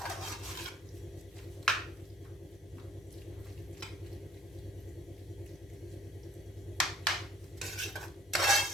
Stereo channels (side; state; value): both; normal; correlation 0.58